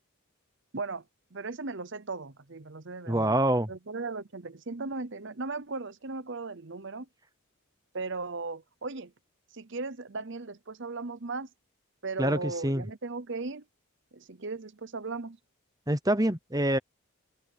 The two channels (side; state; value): both; normal; correlation 0.44